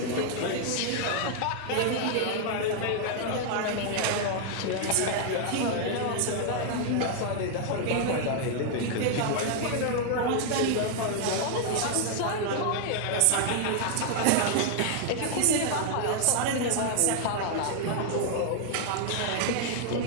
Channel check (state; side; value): different; both; correlation 0.00